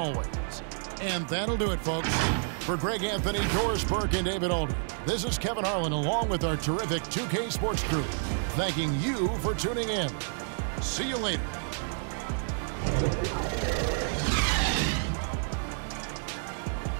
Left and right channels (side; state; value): left; silent; 58 dB below the other